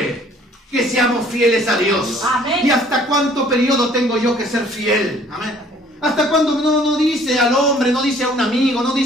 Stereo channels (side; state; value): both; normal; correlation 0.57